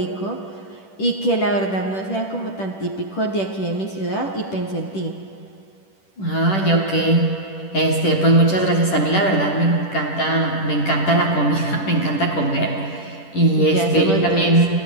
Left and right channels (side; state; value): right; late; 10 ms